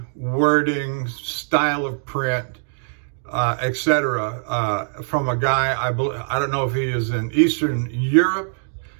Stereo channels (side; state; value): left; silent; digital silence